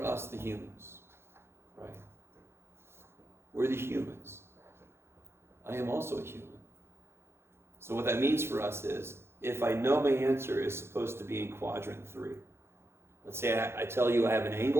us, the humans? Right? We're the humans. I am also a human. So what that means for us is, if I know my answer is supposed to be in quadrant 3, let's say I tell you I have an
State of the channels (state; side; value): late; left; 0.12 ms